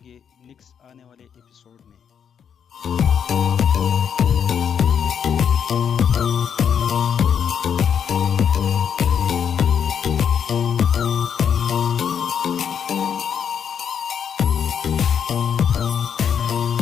گے نیکسٹ آنے والے ایپیسوڈ میں۔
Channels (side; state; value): right; quieter; 7.8 dB